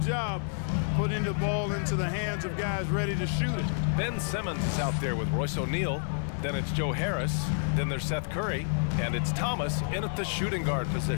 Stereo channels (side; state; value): right; silent; 56 dB below the other